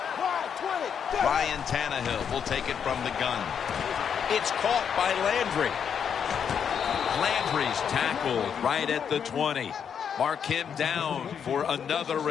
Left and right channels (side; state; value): right; quieter; 7.6 dB